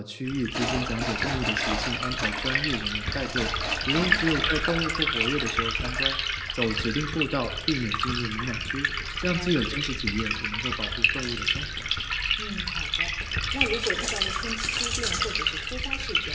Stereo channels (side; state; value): both; identical; correlation 1.00